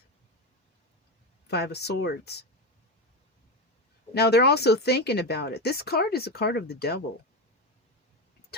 5 of Swords. Now, they're also thinking about it. This card is a card of the devil.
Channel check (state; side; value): normal; both; correlation 0.16